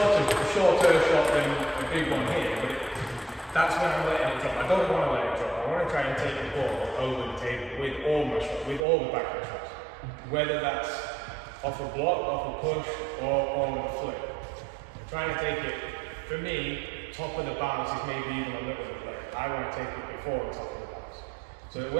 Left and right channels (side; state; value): left; drops out; at 8.8 s